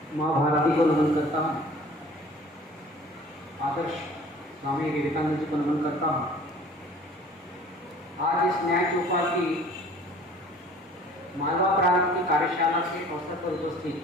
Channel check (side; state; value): both; normal; correlation 0.49